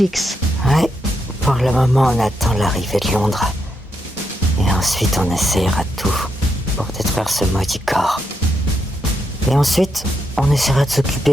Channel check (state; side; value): normal; both; correlation 0.81